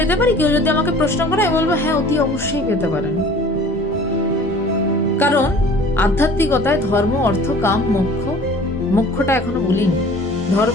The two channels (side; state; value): both; normal; correlation 0.47